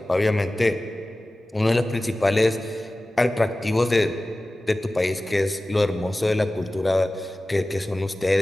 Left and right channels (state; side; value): normal; both; correlation 0.96